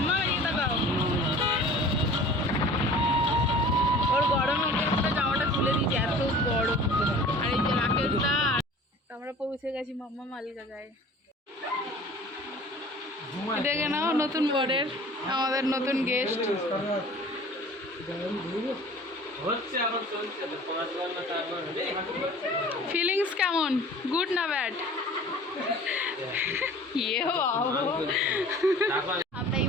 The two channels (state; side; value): normal; both; correlation 0.45